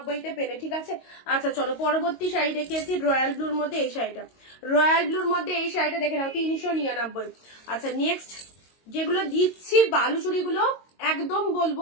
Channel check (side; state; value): right; late; 22 ms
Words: পেলে, ঠিক আছে। আচ্ছা চলো পরবর্তী শাড়ি দেখিয়েছি রয়্যাল ব্লুর মধ্যে এই শাড়িটা, রয়্যাল ব্লুর মধ্যে এই শাড়িটা দেখে নাও 399। আচ্ছা নেক্সট যেগুলো দিচ্ছি বালুচুরিগুলো একদম